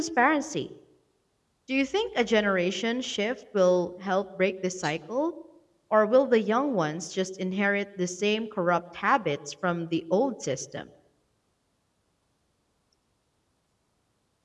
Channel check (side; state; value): both; identical; correlation 1.00